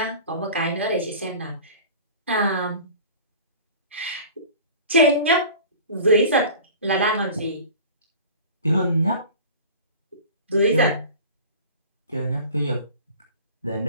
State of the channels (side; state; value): both; inverted; correlation -0.39